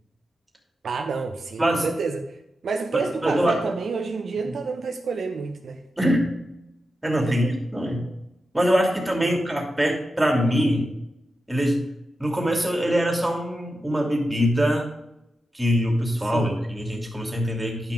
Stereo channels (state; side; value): normal; both; correlation 0.89